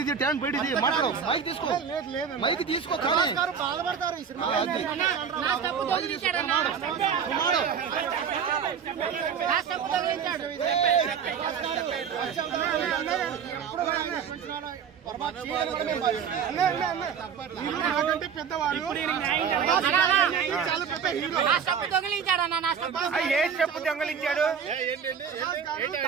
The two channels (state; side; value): quieter; left; 7.1 dB